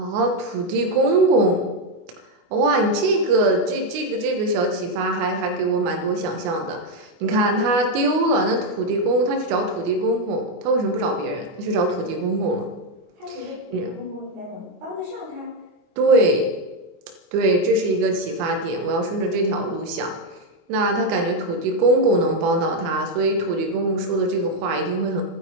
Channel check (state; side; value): late; left; 24 ms